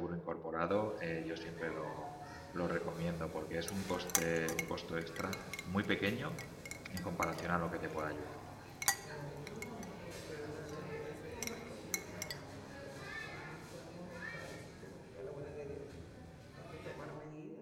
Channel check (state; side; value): identical; both; correlation 1.00